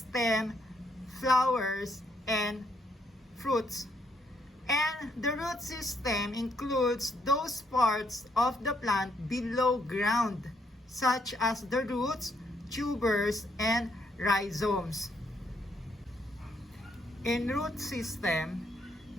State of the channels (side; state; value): both; normal; correlation 0.72